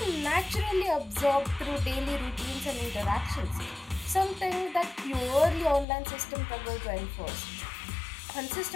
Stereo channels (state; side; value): drops out; right; at 5.9 s